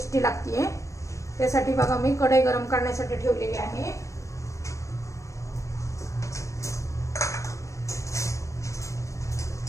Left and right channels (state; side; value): late; right; 0.15 ms